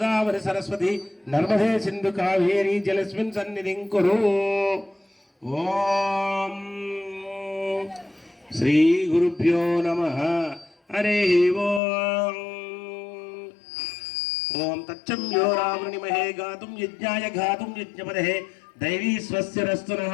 సరస్వతి నర్మదే సింధు కావేరి జలస్మిన్ సన్నిధిం కురు. ఓం శ్రీ గురుభ్యో నమః. హరి ఓం. ఓం తచ్చమ్యో రావృణిమహే గాతుం యజ్ఞాయ గాతుం యజ్ఞపదే దైవీ స్వస్తిరస్తు నః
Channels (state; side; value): drops out; right; at 11.8 s